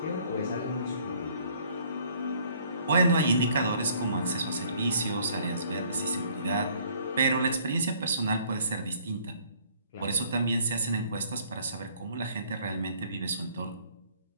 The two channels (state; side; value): inverted; both; correlation -0.60